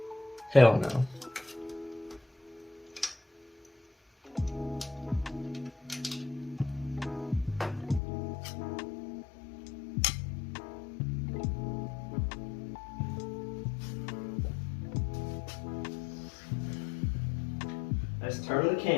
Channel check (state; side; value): drops out; right; at 8.0 s